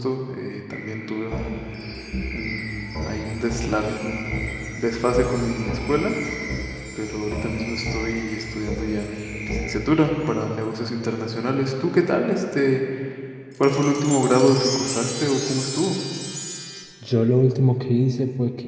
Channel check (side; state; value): both; identical; correlation 1.00